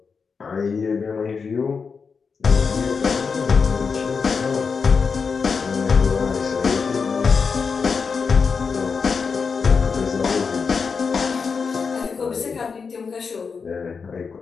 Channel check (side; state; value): right; quieter; 5.4 dB